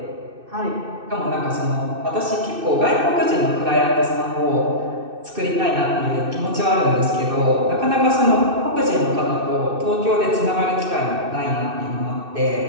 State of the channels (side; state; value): left; late; 2.6 ms